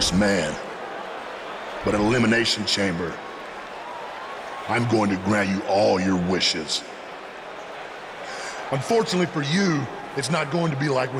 man, but at Elimination Chamber, I'm going to grant you all your wishes. Unfortunately for you, it's not going to be like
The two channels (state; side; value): identical; both; correlation 1.00